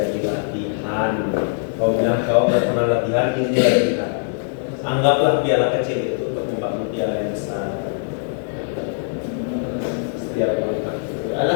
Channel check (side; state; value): right; silent; digital silence